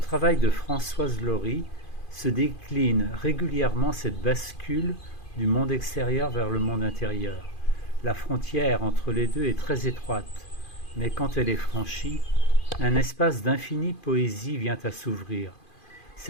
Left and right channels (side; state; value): right; late; 2.5 ms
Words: de Françoise Laurie se décline régulièrement cette bascule du monde extérieur vers le monde intérieur. La frontière entre les deux est très étroite, mais quand elle est franchie, un espace d'infinie poésie vient à s'ouvrir.